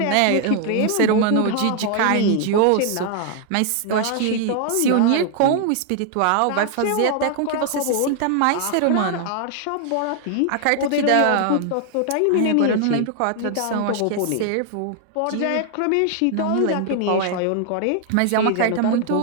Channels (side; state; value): both; different; correlation 0.00